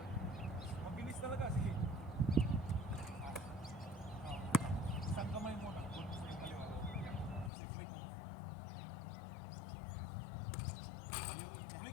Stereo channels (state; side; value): drops out; right; at 7.5 s